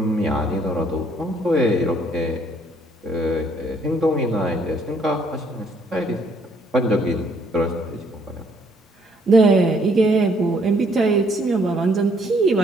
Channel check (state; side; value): normal; both; correlation 0.66